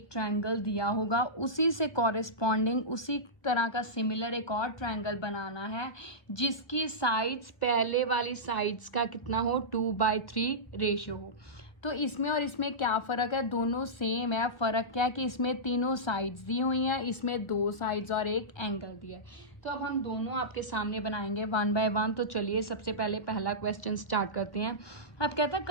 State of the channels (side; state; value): right; late; 1.5 ms